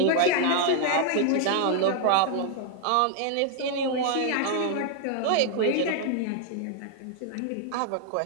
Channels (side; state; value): both; different; correlation 0.00